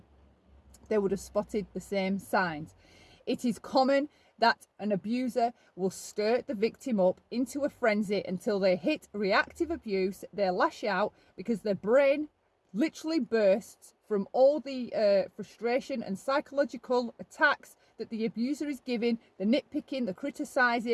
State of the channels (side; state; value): both; identical; correlation 1.00